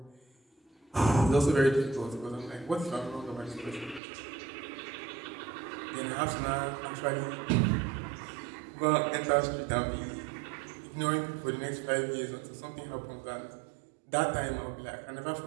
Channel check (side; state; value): left; drops out; at 4.0 s